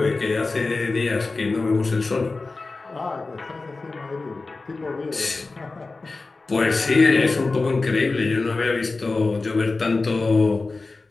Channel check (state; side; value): quieter; right; 3.6 dB